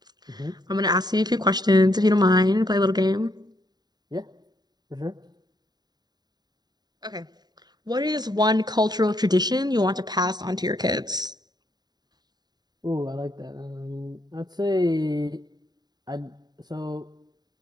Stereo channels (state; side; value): late; left; 0.20 ms